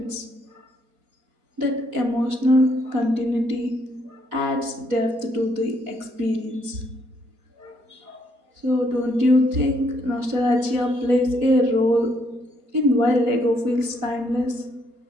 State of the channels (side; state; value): left; late; 4.3 ms